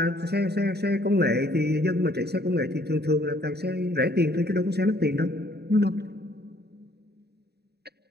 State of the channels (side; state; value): left; late; 0.47 ms